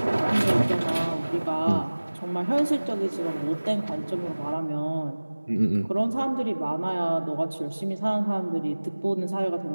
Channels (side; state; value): both; inverted; correlation -1.00